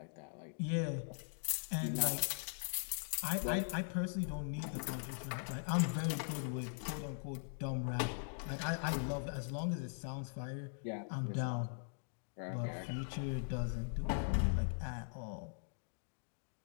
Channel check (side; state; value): right; silent; digital silence